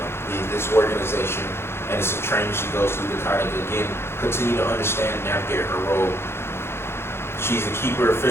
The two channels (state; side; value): late; right; 0.12 ms